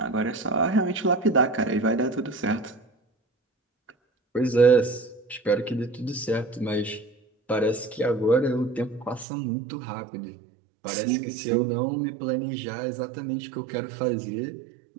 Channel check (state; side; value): drops out; left; at 9.2 s